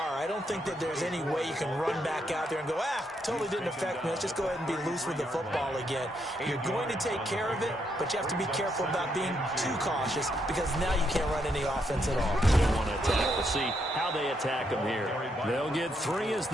I don't think that there's any way you can run back out there and go, totally didn't affect me. Let's just go ahead and be loose with the football again. You're going to take care of it, but you have to be careful about being too cautious because now you can't run any offense at all. They want to attack. We'll see how they attack them here. They'll get 3 as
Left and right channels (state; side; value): normal; both; correlation 0.77